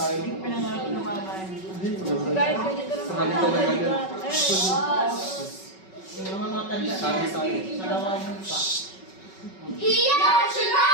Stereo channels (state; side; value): late; right; 5.3 ms